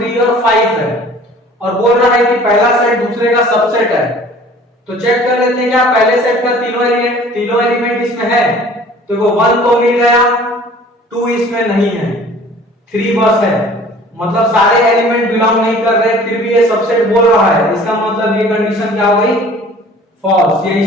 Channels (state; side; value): normal; both; correlation 0.49